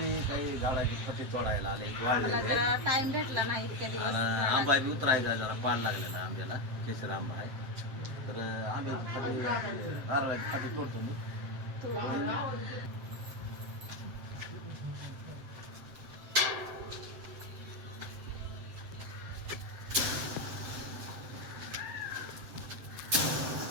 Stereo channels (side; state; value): left; late; 7.7 ms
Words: काही झाडाची फटी तोडायला आले मला जरा टाइम भेटला नाही इतक्या दिवस. आंबा बी उतरायचा जरा पाड लागलेला आंब्याला केसर आंबा आहे तर आंब्याची फटी नारळाची फटी तोडतो मी.